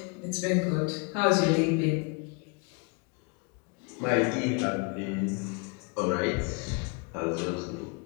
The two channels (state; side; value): quieter; right; 33.2 dB